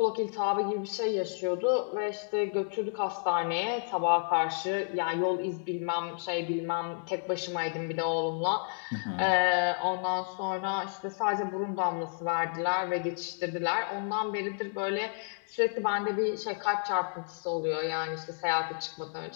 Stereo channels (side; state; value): right; silent; 57 dB below the other